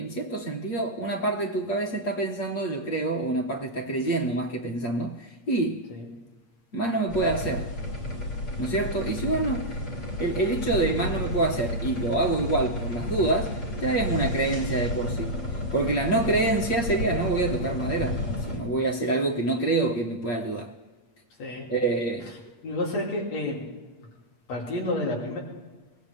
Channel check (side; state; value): right; late; 8.5 ms